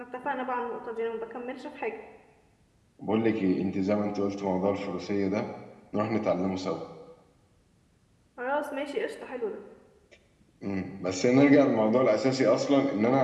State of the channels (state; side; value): identical; both; correlation 1.00